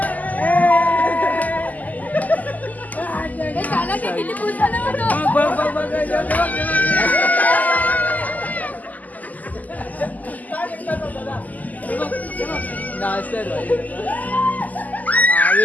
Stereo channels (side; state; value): right; late; 0.079 ms